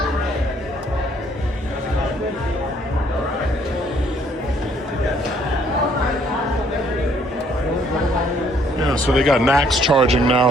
Yeah, so they got Nax charging now,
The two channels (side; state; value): both; normal; correlation 0.64